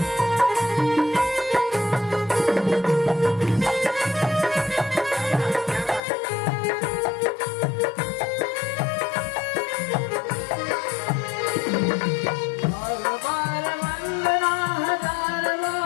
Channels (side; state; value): right; drops out; at 6.0 s